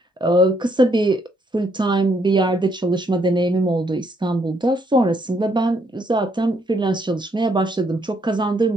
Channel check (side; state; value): both; normal; correlation 0.72